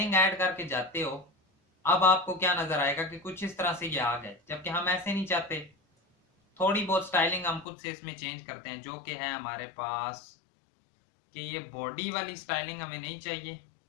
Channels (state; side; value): drops out; right; at 7.7 s